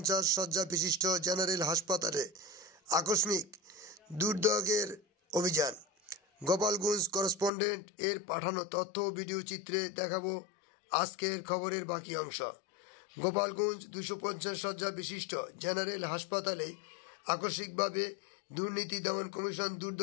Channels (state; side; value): drops out; right; at 7.5 s